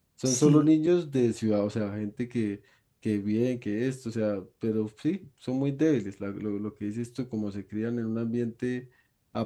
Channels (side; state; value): both; identical; correlation 1.00